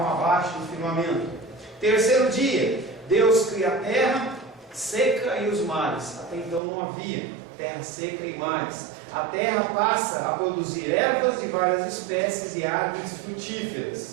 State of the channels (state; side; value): drops out; left; at 6.6 s